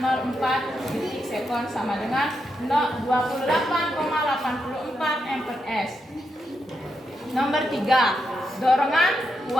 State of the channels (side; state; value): both; normal; correlation 0.83